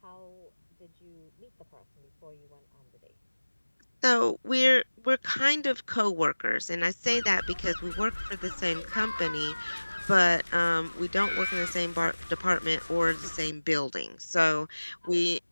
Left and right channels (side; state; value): both; inverted; correlation -1.00